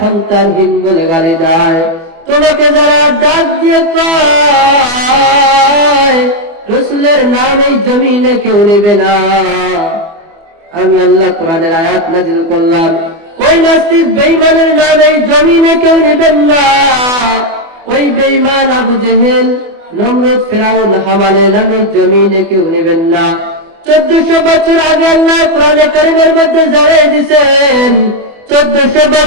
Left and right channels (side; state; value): left; late; 24 ms